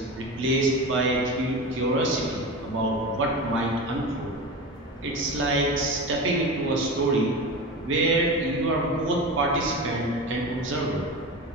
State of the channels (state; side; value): normal; both; correlation 0.27